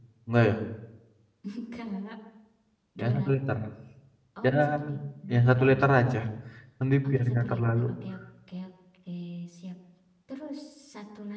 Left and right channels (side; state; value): both; identical; correlation 1.00